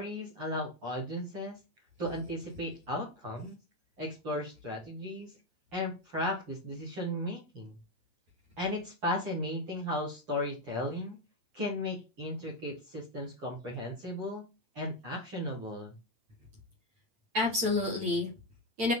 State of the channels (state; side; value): late; left; 8.9 ms